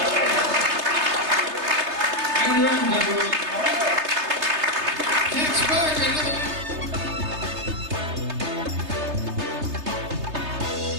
And your end, everyone.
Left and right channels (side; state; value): left; late; 3.3 ms